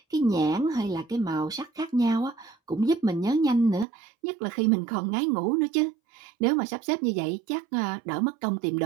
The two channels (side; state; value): left; drops out; at 3.9 s